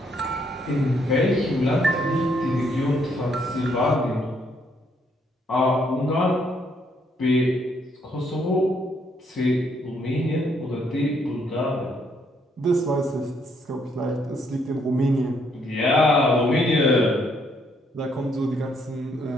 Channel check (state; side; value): normal; both; correlation 0.71